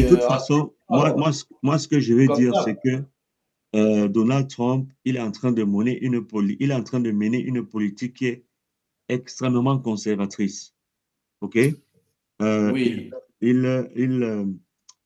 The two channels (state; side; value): identical; both; correlation 1.00